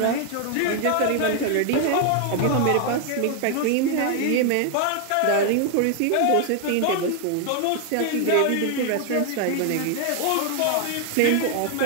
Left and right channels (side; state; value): both; different; correlation 0.00